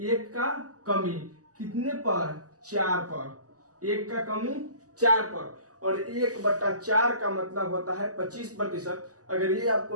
1 का कमी कितने पर? 4 पर, 1 का कमी 4 पर। और 1/4 का मतलब होता है 25%। अगर ये आपको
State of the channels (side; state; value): left; late; 0.67 ms